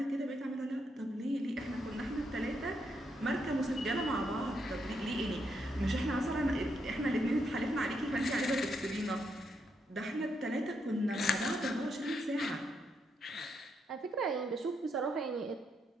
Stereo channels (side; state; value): both; normal; correlation 0.79